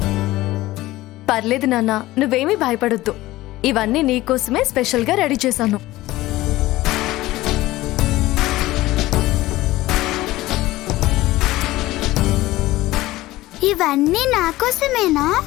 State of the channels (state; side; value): quieter; right; 17.5 dB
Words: పర్లేదు నాన్న, నువ్వేమీ భయపడొద్దు. ఇవన్నీ నీకోసమే స్పెషల్గా రెడీ చేశాను. ఇవన్నీ నా కోసమేనా?